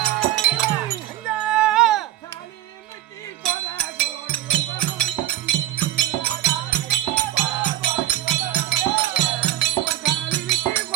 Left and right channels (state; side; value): quieter; left; 13.9 dB